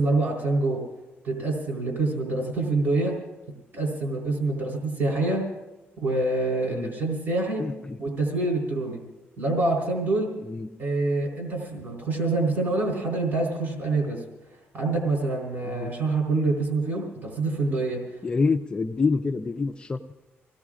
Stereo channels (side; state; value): both; normal; correlation 0.63